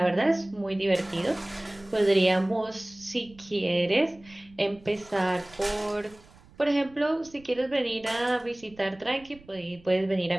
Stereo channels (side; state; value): right; noise; rumble, 25 dB below the sound